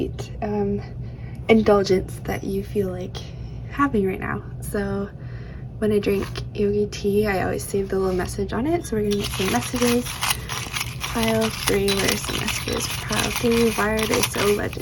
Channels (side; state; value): both; identical; correlation 1.00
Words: indulgence that you feel like having right now. So when I drink yogi tea, I always save the little message on it. So we're gonna get some messages. Pile 3, where are some messages for pile 3? Why are they so